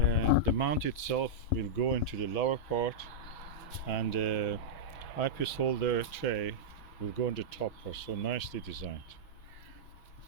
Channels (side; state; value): right; late; 6.2 ms